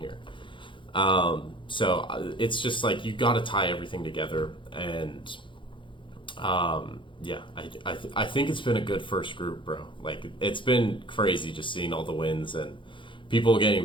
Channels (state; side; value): late; right; 0.24 ms